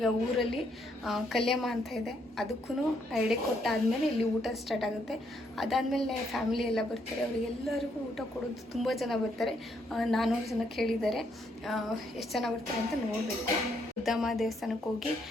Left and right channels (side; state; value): both; normal; correlation 0.73